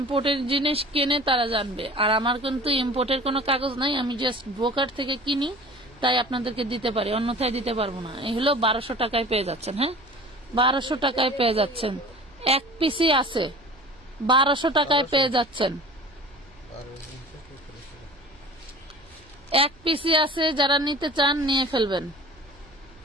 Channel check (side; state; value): right; noise; hum, 27 dB below the sound